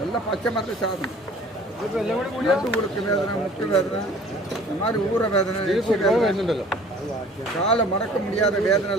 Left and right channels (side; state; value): both; normal; correlation 0.50